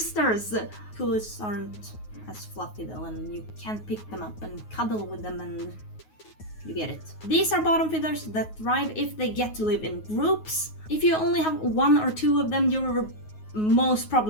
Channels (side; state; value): right; late; 9.4 ms